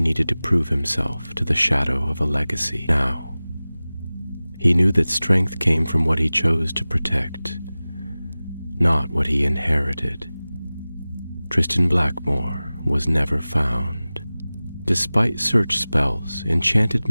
needed to prove himself to the shadow of a legacy. Now he knew that strength came from what he chose to protect, not what he inherited. Tristan Blackmore was never found. Despite search spells, enchanted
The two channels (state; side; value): inverted; both; correlation -0.98